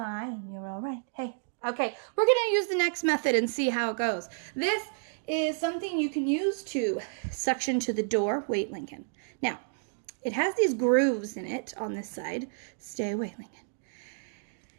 You're all right. Hey, okay. We're going to use the next method and see how it goes. This is something you can use to suction to the door. Wait, Lincoln. Now, it has these grooves in it on this side. Stay away, Lincoln.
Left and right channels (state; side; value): silent; left; digital silence